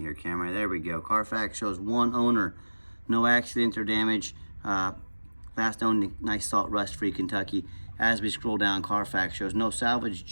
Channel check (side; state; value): both; inverted; correlation -1.00